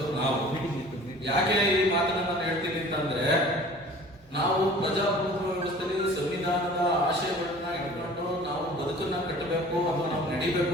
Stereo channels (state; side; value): normal; both; correlation 0.46